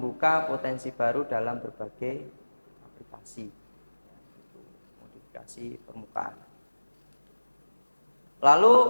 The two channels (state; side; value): inverted; both; correlation -1.00